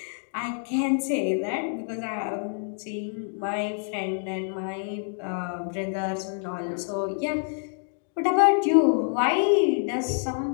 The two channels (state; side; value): silent; right; 60 dB below the other